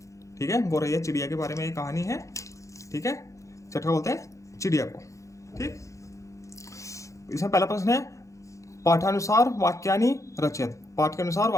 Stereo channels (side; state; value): right; late; 0.15 ms